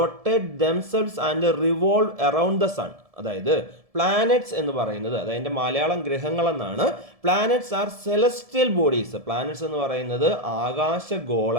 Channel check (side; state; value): left; late; 1.7 ms